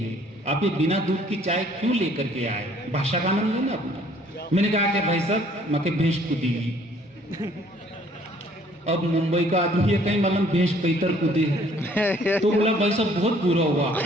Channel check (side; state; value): both; normal; correlation 0.59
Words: आप ये बिना दूध की चाय क्यों लेकर के आए? भाषा का आनंद लेना अपना। मैंने कहा कि भाई साहब, मके भैंस कूदेगी। अब मुंबई का आदमी है, कहीं मालूम भैंस पैतर कूदे तो बोला, भाई साहब बहुत बुरा हुआ